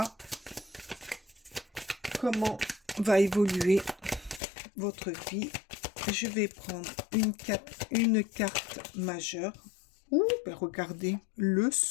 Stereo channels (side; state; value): right; drops out; at 4.4 s